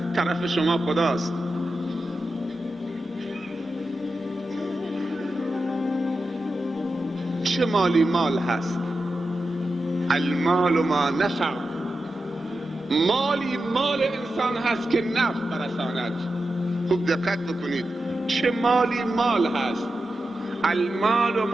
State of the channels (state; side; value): normal; both; correlation 0.90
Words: طرف شما خداست. چه مالی مال هست؟ المال ما نفع. مالی مال انسان هست که نفع برساند. خوب دقت بکنید، چه مالی مال هست؟ المال